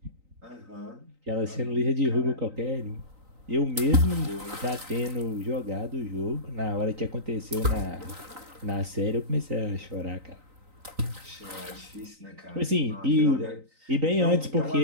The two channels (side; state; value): left; late; 3.9 ms